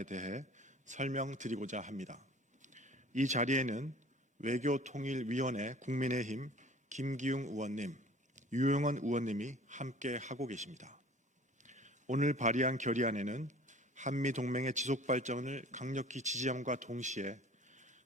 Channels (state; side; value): normal; both; correlation 0.47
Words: 대해 설명드리고자 합니다. 이 자리에는 외교통일위원회 국민의힘 김기웅 의원님, 유영원 의원님이 함께 하고 계십니다. 오늘 발의한 결의안에는 한미동맹의 지속발전을 강력히 지지함과 동시에